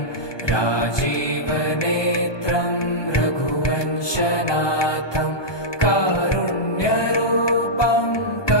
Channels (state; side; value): late; right; 1.2 ms